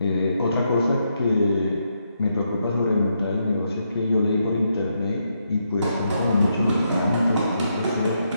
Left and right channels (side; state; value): both; inverted; correlation -0.80